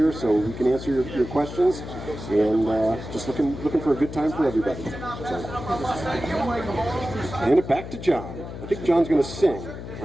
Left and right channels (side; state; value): left; noise; hum, 10 dB below the sound